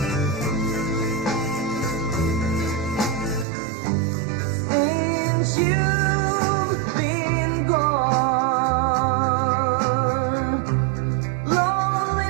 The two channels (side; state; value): left; drops out; at 3.5 s